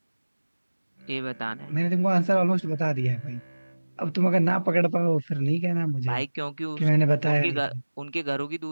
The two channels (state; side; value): inverted; both; correlation -1.00